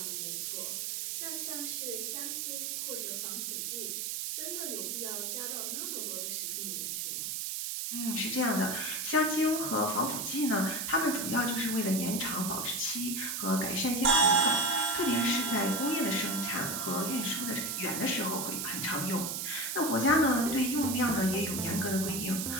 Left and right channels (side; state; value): right; noise; hiss, 2 dB below the sound